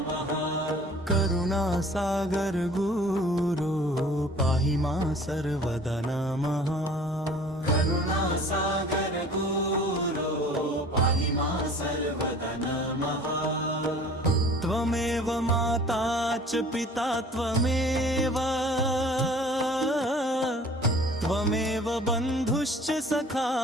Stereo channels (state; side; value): normal; both; correlation 0.48